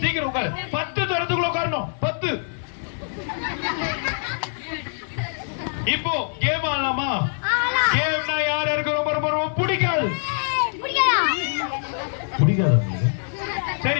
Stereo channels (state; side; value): silent; right; digital silence